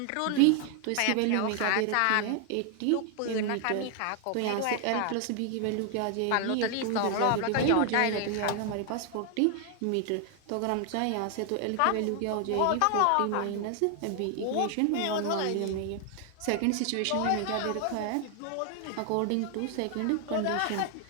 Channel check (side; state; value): both; different; correlation 0.00